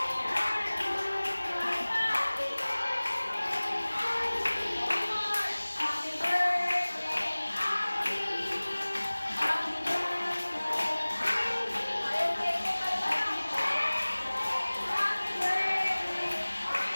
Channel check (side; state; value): both; inverted; correlation -1.00